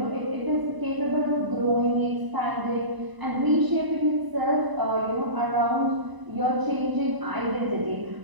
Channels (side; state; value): left; late; 1.0 ms